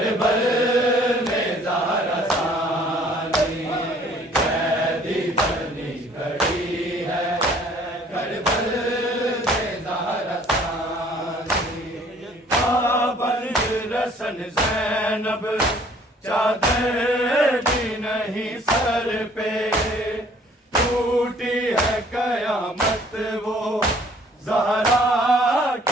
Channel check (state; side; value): normal; both; correlation 0.57